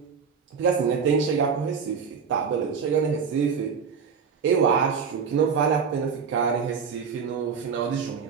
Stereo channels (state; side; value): quieter; left; 6.2 dB